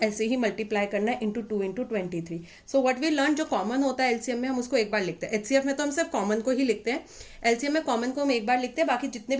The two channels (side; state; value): both; identical; correlation 1.00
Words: ऐसे ही मल्टीप्लाई करना है into 2 into 23. So what we learn, जो कॉमन होता है LCM में हम उसको एक बार लिखते हैं, HCF में तो हम सिर्फ कॉमन को ही लिखते हैं, LCM में कॉमन को हम एक बार लिखते हैं, बाकी जितने